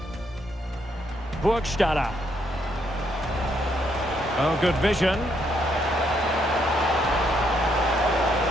Burgstaller. Oh, good vision.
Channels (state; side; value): normal; both; correlation 0.74